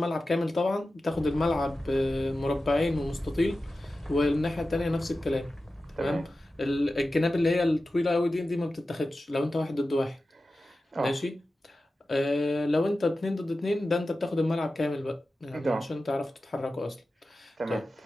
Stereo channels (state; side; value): normal; both; correlation 0.94